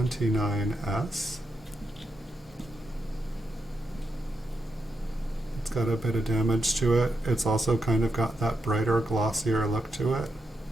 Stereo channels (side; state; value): both; normal; correlation 0.85